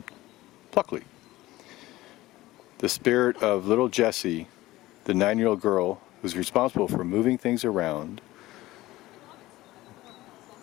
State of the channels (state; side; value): quieter; right; 17.5 dB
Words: Pluckley. The spirit of little Jessie, the 9-year-old girl who's responsible for moving things around,